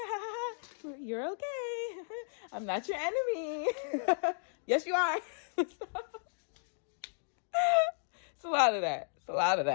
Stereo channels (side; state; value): right; silent; digital silence